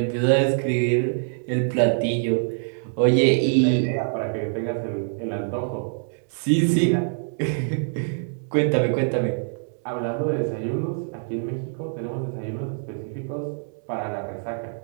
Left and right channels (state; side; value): silent; left; digital silence